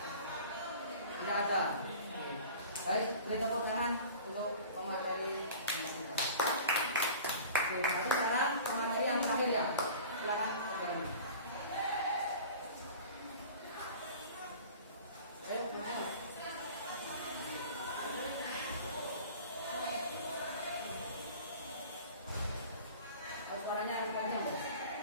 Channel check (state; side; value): inverted; both; correlation -0.41